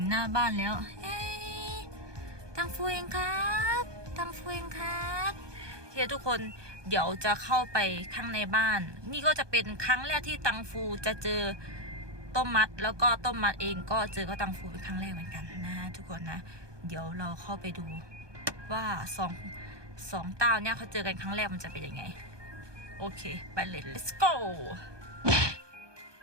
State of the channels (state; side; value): late; left; 1.2 ms